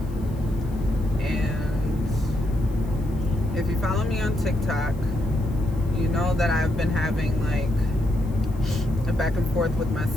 And if you follow me on TikTok, you know that I've been having like a back and forth with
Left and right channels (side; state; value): left; noise; hiss, 27 dB below the sound